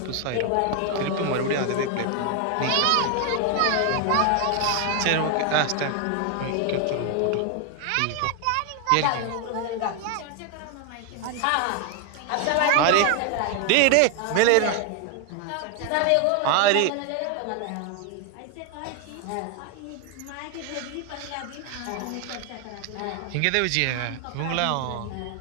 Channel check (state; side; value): different; both; correlation 0.01